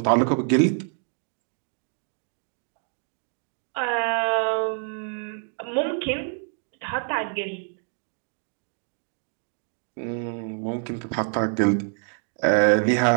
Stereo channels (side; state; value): left; silent; 61 dB below the other